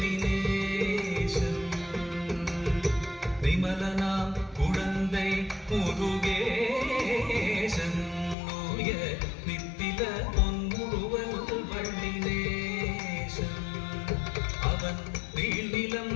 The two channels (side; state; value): right; drops out; at 8.3 s